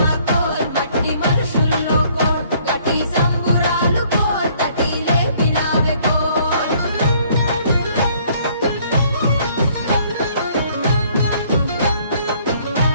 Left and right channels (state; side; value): inverted; both; correlation -0.62